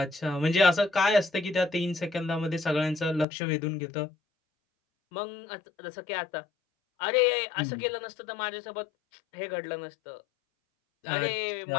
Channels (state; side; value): drops out; right; at 3.2 s